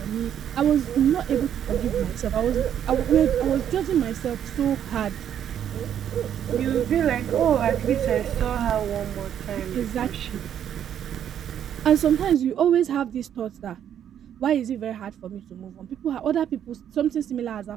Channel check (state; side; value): quieter; left; 9.6 dB